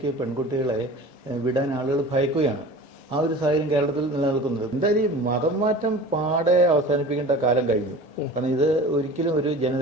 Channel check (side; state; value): right; late; 1.7 ms